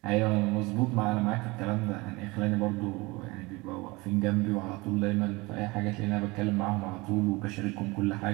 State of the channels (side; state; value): left; quieter; 23.7 dB